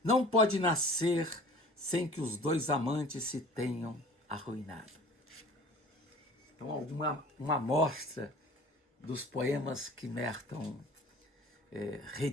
não pode nascer sem que os 2 amantes se tenham arruinado. Então, uma amostra dos poemas que Merton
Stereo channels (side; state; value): both; normal; correlation 0.45